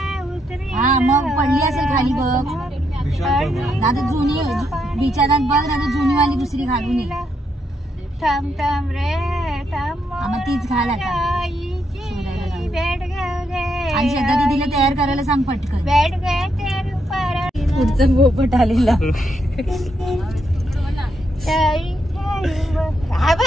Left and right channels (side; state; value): both; normal; correlation 0.79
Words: हा मग पडली असेल खाली बघ आता जुनी बिचारात बघ ना जुनी वाली दुसरी घालून ये मग तीच घाल आता आणि श्रद्धा दीदीला तयार करायला सांग पटकन पुढचा पोपट आलेला